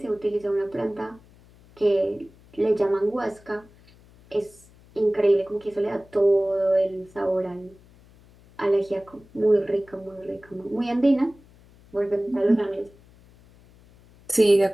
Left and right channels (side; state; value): left; noise; hum, 26 dB below the sound